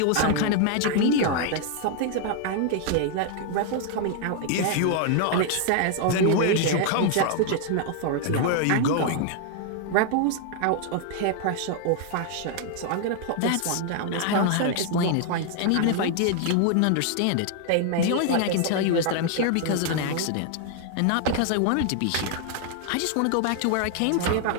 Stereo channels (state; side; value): different; both; correlation 0.00